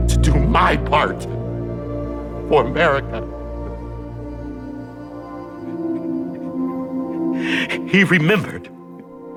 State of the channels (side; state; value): both; identical; correlation 1.00